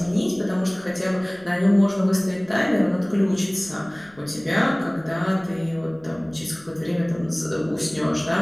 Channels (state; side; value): noise; left; rumble, 28 dB below the sound